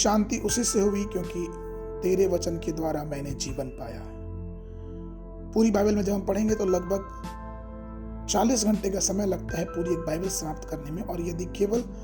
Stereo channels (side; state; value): both; identical; correlation 1.00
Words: उसी से हुई क्योंकि तेरे वचन के द्वारा मैंने जीवन पाया है। पूरी बाइबल में जब हम पढ़ेंगे तो लगभग 40 घंटे का समय लगता है पूरी एक बाइबल समाप्त करने में, और यदि केवल